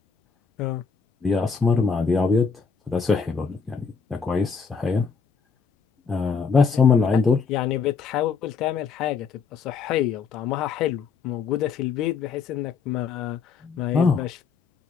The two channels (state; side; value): quieter; right; 5.5 dB